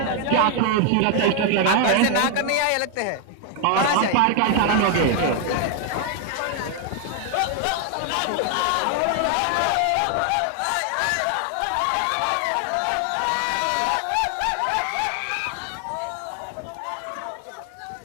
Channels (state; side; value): different; both; correlation 0.00